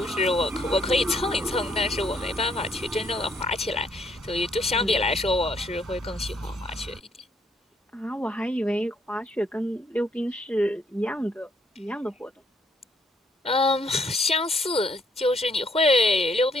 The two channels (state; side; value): normal; both; correlation 0.69